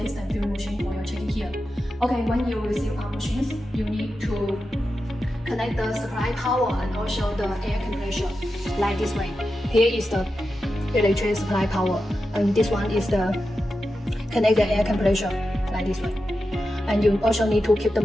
filling machine for your checking here. Okay, when you receive our machines, you need to connect the supply power and also the air compressor like this way. Here is the electric supply power, and this one is the connect the air compressor like this way. And you also need to keep the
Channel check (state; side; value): normal; both; correlation 0.90